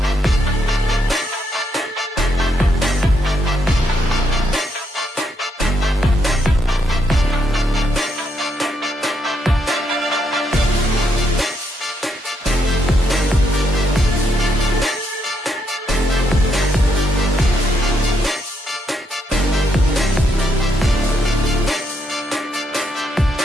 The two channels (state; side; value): normal; both; correlation 0.77